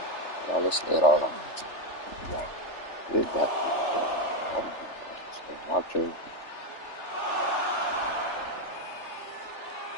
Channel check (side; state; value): right; late; 3.4 ms